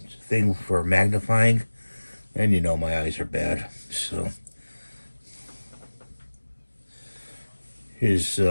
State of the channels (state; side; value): inverted; both; correlation -1.00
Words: It's a thing for magnifying. And you know my eyes are bad. So